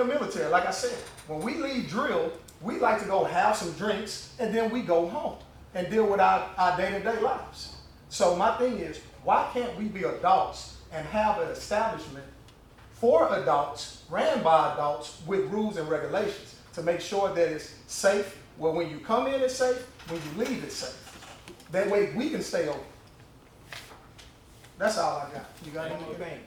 military, like I said. When we leave drill, we like to go have some drinks, and then we go home and deal with our day-to-day lives. So my thing is, why can't we be adults and have an establishment for adults, ran by adults, with rules and regulations to make sure that it's safe, where when you come in it's safe, when you leave it's safe. That way we can stay open. That's all I got. You got One more anything?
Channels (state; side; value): identical; both; correlation 1.00